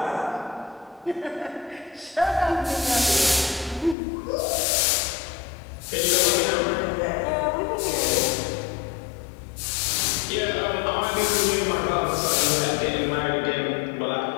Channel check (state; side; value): drops out; right; at 4.0 s